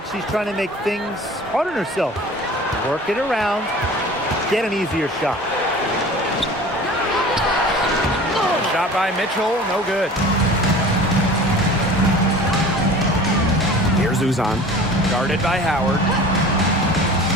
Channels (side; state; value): both; normal; correlation 0.42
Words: she's trying to make things hard on herself. Work it around, get an easier shot. Shot by Mitchell, no good. Here's Uzan. Guarded by Howard.